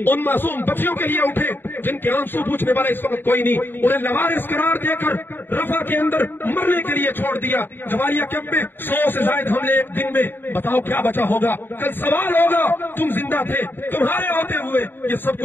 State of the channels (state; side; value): late; right; 0.096 ms